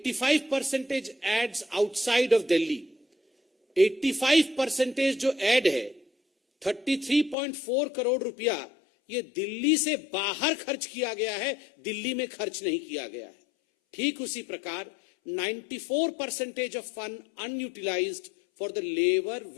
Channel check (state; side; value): drops out; right; at 7.4 s